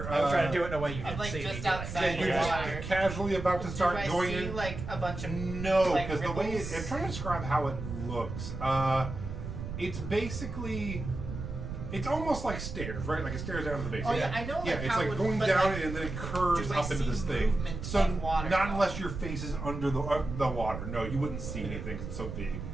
I'm trying to do it in a way you I'm didn't like see just me doing. outside You're the just water. casually about to Do start I going see in. like a bunch of No, like, because the way ripples? I'm trying to describe how it looks. It's basically, it's almost like stairs, right? Like it stairs down to the base. Oh, yeah, I know, Yeah, like, it's how like it would- going but, down like, and then it curves do I up into see this thing. movement So of water, not though? unless your face is under the water. No, you wouldn't see anything 'cause it's so big.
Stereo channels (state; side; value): noise; right; rumble, 7 dB below the sound